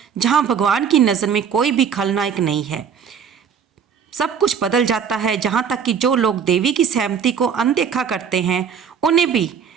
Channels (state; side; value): quieter; left; 7.2 dB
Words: जहाँ भगवान की नज़र में कोई भी खलनायक नहीं है। सब कुछ बदल जाता है, जहाँ तक कि जो लोग देवी की सहमति को अनदेखा करते हैं उन्हें भी